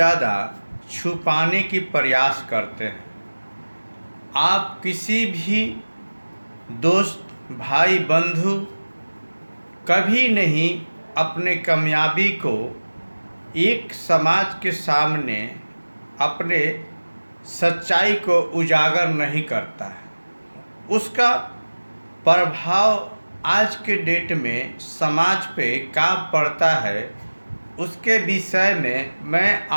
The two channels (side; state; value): both; inverted; correlation -1.00